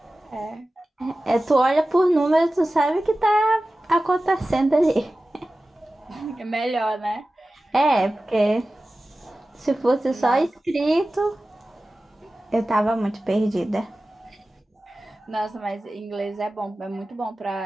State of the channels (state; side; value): normal; both; correlation 0.95